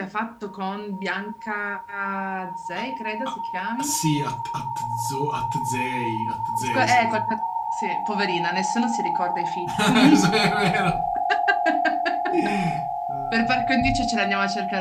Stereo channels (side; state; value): both; identical; correlation 1.00